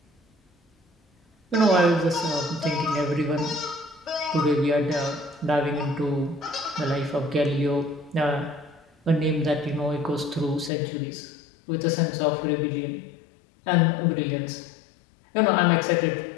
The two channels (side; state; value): right; drops out; at 10.7 s